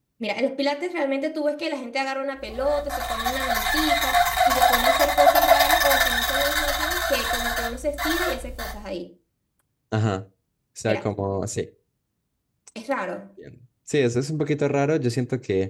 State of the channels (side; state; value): both; identical; correlation 1.00